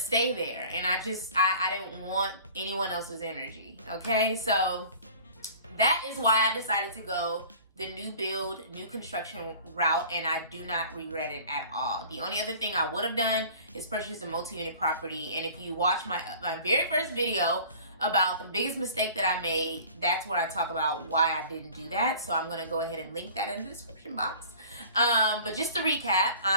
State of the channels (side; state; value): both; inverted; correlation -0.45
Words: there. And I didn't want anyone else's energy. Okay. So that is why I decided to go the new build, new construction route, and I do not regret it at all. The only other thing I would have done is purchase a multi-unit property. And if you watch my very first video about the biggest mistake that I made, that's where I talk about why I didn't do that. So I'm gonna go ahead and link that in the description box. But just to recap,